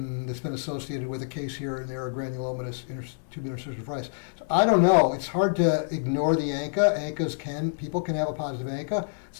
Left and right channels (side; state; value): right; silent; digital silence